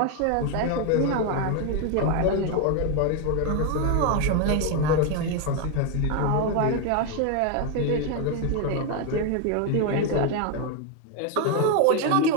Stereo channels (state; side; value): different; both; correlation 0.01